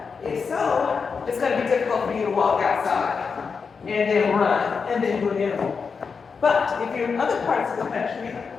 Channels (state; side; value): quieter; right; 5.4 dB